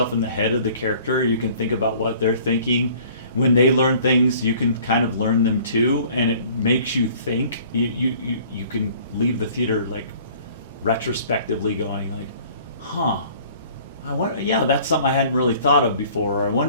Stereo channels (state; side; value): inverted; both; correlation -0.52